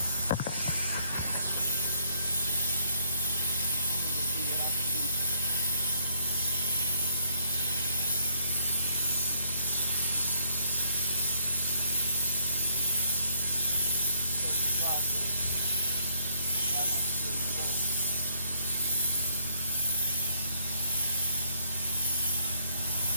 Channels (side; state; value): both; inverted; correlation -0.66